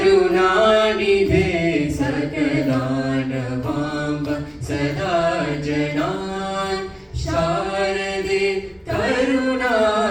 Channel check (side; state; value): both; identical; correlation 1.00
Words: सकलानवाम्ब सदा जनान् शारदे